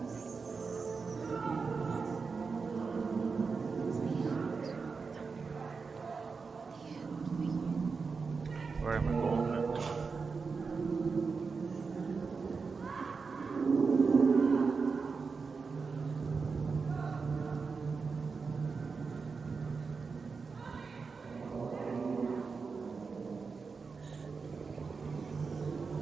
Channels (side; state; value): left; quieter; 4.9 dB